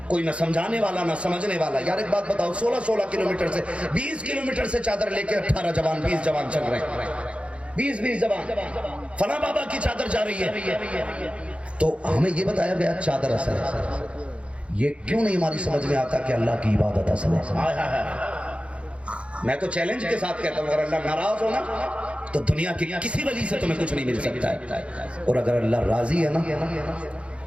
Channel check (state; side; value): late; left; 0.060 ms